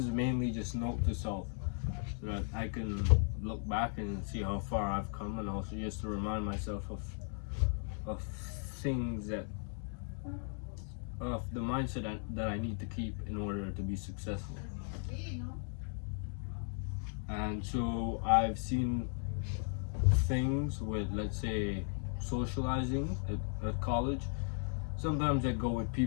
mainly just note to self, so that I can look back and see how far I've come, and also just to remind myself of things of the mindset that I need to keep in order to be successful. And so I've seen things with, let's say, socializing at college. Sometimes I go with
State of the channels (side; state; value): right; silent; 53 dB below the other